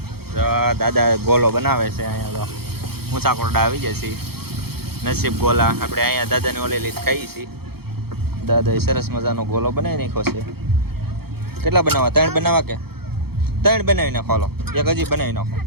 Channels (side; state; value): left; late; 0.96 ms